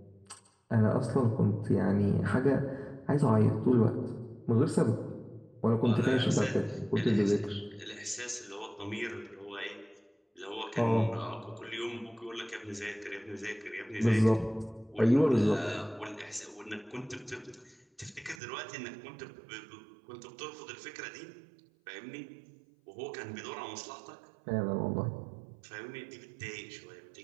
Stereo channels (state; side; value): drops out; left; at 18.4 s